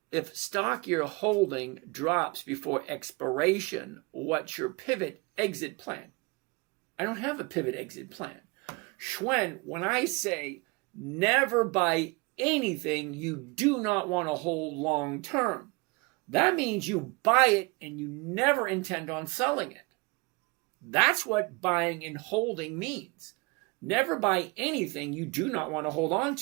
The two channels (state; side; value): quieter; left; 27.3 dB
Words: stock you're holding drops before expiration, what's your pivot exit plan? I don't have a pivot exit plan. Schwen, when I say never buy anything you do not want to hold long term, that means you buy it and you never intend on selling it. That's what buying and holding means. Never buy anything you do not want to hold on